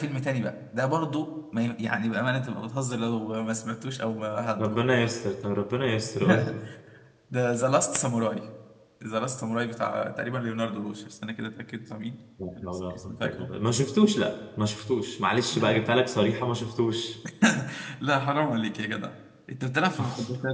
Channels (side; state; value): both; identical; correlation 1.00